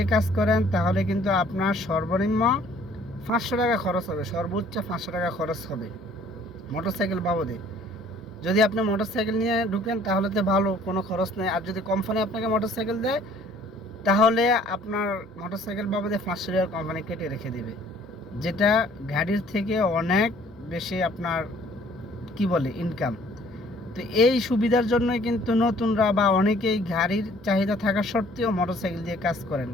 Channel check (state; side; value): normal; both; correlation 0.57